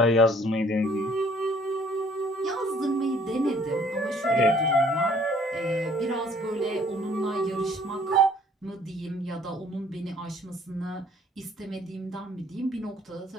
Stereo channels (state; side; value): normal; both; correlation 0.59